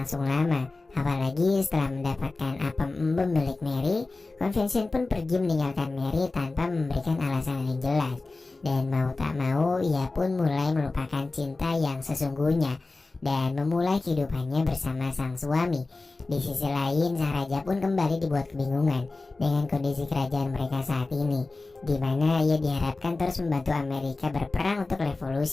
lama, apalagi setelah mendapatkan apem embem milik Mary. Conversion pun pergi meninggalkan Mary tanpa memberikan alasan yang jelas. Dan mau tak mau ia pun mulai melupakan cinta yang sesungguhnya dan memulai kehidupannya bersama sang suami. Di sisi lain, sang raja pun kembali dibuat kebingungan dengan kondisi kerajaan mereka saat ini, di mana ia diharapkan terus membantu Amerika berperang untuk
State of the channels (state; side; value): quieter; right; 3.4 dB